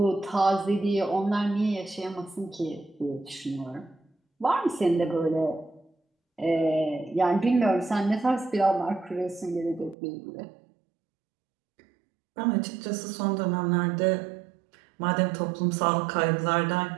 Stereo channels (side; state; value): left; drops out; at 10.0 s